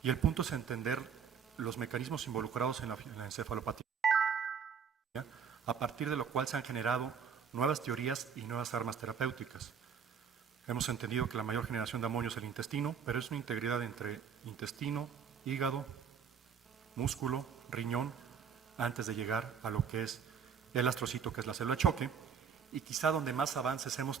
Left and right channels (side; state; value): left; quieter; 7.0 dB